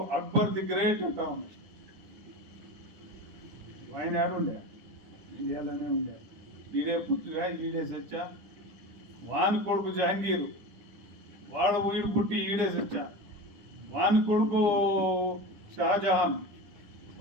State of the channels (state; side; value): late; left; 9.9 ms